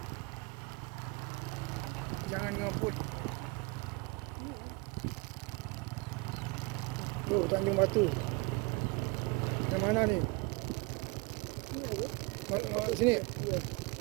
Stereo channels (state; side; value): quieter; left; 27.4 dB